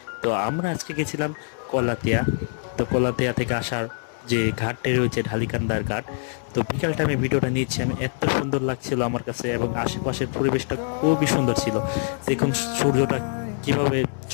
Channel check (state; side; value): silent; right; 62 dB below the other